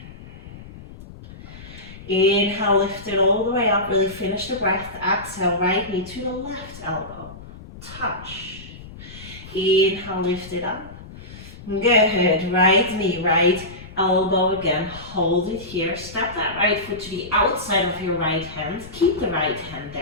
Inhale, lift it all the way up, really finish the breath. Exhale, right knee to the left elbow. Touch. Inhale, lift it up. Good, right knee, right elbow again, hold it here, step that right foot to the outside of your right hand, keep the right hand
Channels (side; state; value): left; noise; rumble, 16 dB below the sound